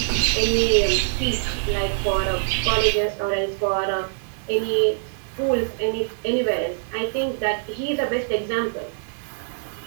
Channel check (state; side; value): silent; left; digital silence